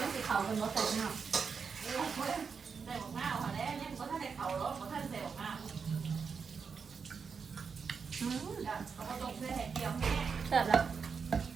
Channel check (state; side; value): quieter; left; 5.8 dB